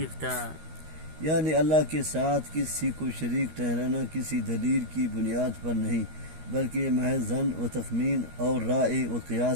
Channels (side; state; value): left; late; 13 ms